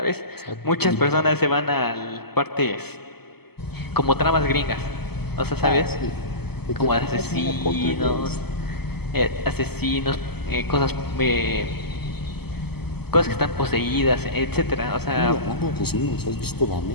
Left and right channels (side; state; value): right; late; 0.96 ms